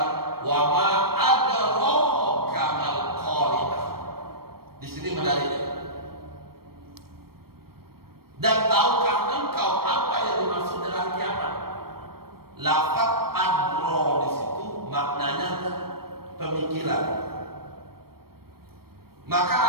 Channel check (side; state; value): left; late; 0.94 ms